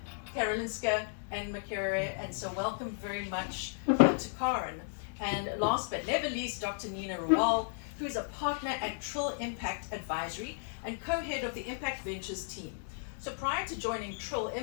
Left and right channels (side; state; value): right; silent; digital silence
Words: Karolinska and Makerere, and so welcome very much to Karen. And last but never least, Dr. Nina Rawal, who is a partner at Trill Impact Advisory and co-head of the Impact Ventures team. So prior to joining Trill